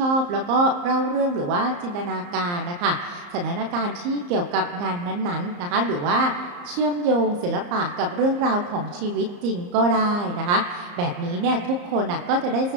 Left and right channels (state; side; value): late; left; 34 ms